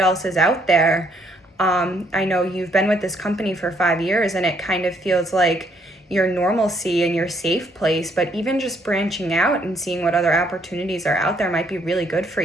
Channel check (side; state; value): both; normal; correlation 0.68